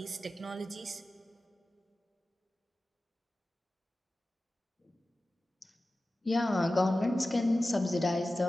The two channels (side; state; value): both; normal; correlation 0.95